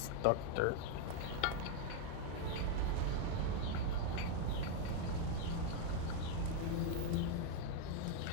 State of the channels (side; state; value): both; different; correlation 0.01